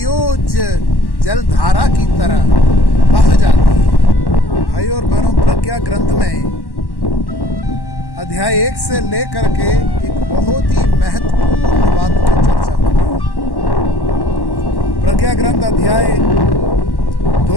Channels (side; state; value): right; late; 1.1 ms